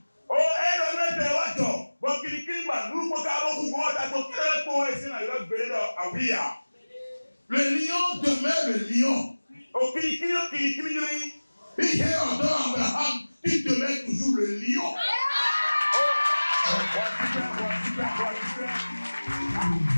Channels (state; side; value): inverted; both; correlation -1.00